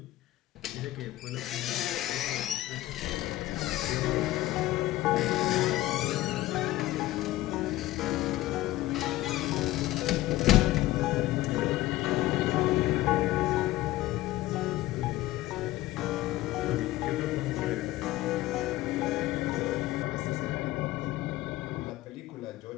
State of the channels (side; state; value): right; quieter; 16.5 dB